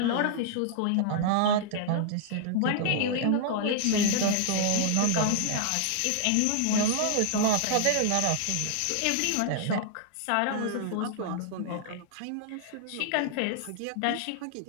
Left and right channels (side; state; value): both; different; correlation -0.01